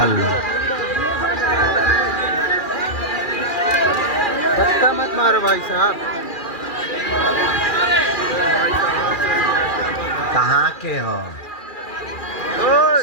धक्का मत मारो भाई साहब। कहाँ के हो?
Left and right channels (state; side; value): late; right; 2.4 ms